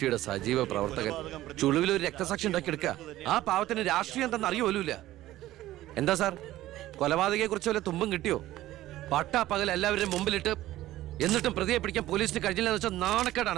സജീവ പ്രവർത്തകൻ ചുളിവിൽ ഒരു രക്തസാക്ഷി ഉണ്ടാക്കിയെടുക്കുക. ആ പാവത്തിന് രാഷ്ട്രീയം എന്തെന്ന് അറിയുമല്ല. എന്താ സാർ, കൊലപാതകയെ കുറിച്ച് വല്ല തുമ്പും കിട്ടിയോ? പട്ടാ പകൽ എല്ലാവരുടെയും മുമ്പിലിട്ട് എന്നിട്ടും പ്രതിയെ പിടിക്കാൻ പോലീസിന് കഴിഞ്ഞില്ലെന്ന് വെച്ചാൽ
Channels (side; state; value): left; quieter; 15.2 dB